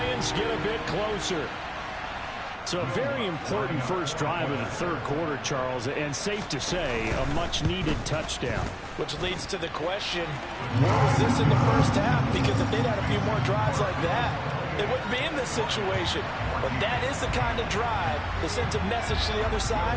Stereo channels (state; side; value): identical; both; correlation 1.00